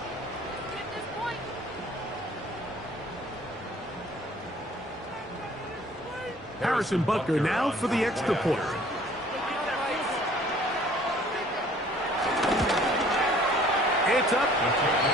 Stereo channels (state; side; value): normal; both; correlation 0.54